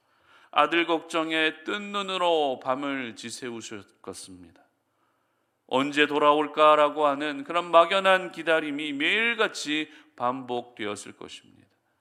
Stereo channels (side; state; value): both; identical; correlation 1.00